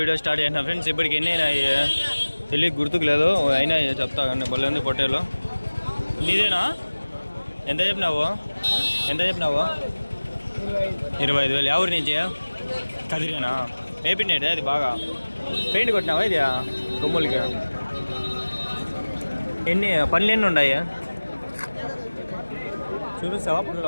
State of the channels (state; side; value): inverted; both; correlation -1.00